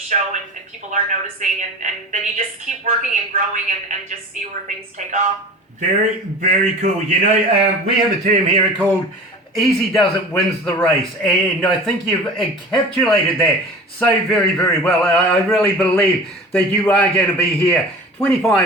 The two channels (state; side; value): normal; both; correlation 0.37